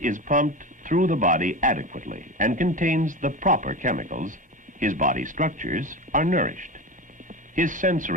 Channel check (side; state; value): both; normal; correlation 0.26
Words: pumped through the body adequately and contains the proper chemicals, his body structures are nourished. His